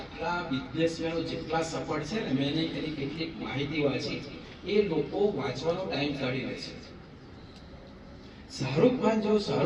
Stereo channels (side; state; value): both; identical; correlation 1.00